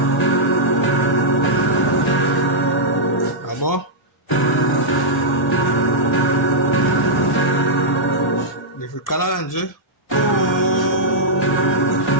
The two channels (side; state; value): both; normal; correlation -0.10